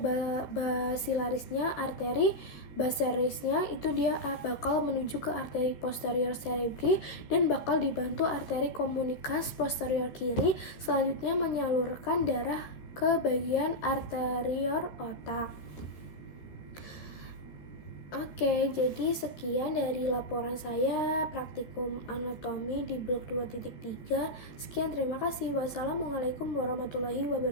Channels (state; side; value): late; right; 13 ms